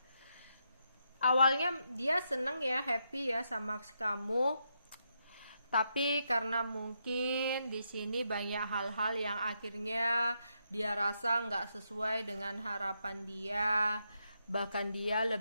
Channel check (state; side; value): inverted; both; correlation -0.81